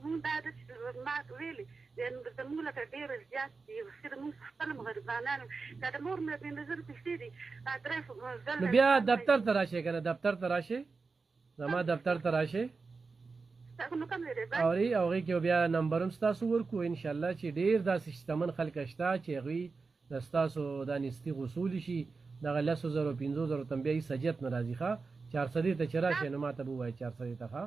مونږ دا ده چې ما ویلې زموږ لکه ډېر زیات دي خو مونږ خپل هم غریبانان که د مور مې 15,000 پیسې دي نو بیا دفتر ته راشئ که نه دفتر ته راشئ زما دفتر ته راشئ اوري او هغې کې بیا نمبر هم ستاسو ورکړو انشاءالله چې ډېر داسې شتمن خلک شته چې هغوی د ستاسو دا نیستي غوصولی شي دغه 10,000 15,000 ته بیا هېڅ حاجت نه راځي ښه 400 ته چې راشئ نو ما ته به ووایه 400 ته ښه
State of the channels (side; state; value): left; quieter; 4.4 dB